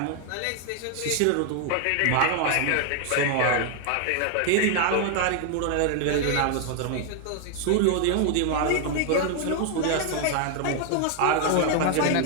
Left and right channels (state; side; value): different; both; correlation 0.00